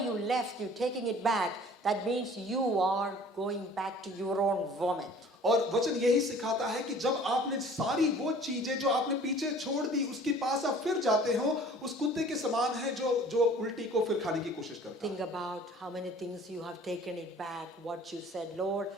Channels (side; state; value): both; normal; correlation 0.49